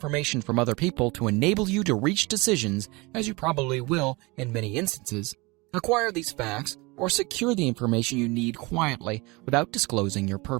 from other people to enable you to reach decisions, as you probably will in many instances, acquire these facts or secure the information you need quietly without disclosing your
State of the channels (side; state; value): left; quieter; 25.0 dB